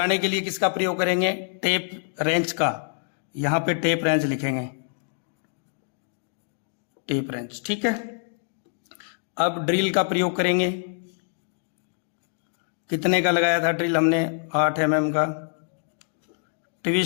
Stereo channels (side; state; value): right; silent; digital silence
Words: के लिए किसका प्रयोग करेंगे, टेप रेंच का। यहां पे टेप रेंच लिखेंगे, टेप रेंच, ठीक है। अब ड्रिल का प्रयोग करेंगे, कितने का लगाया था ड्रिल हमने 8 mm का।